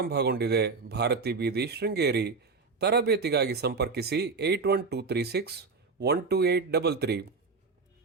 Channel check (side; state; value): left; quieter; 4.5 dB